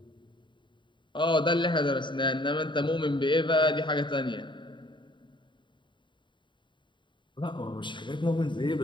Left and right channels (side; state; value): right; late; 0.23 ms